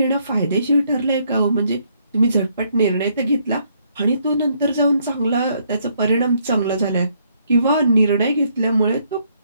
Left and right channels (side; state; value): both; inverted; correlation -0.70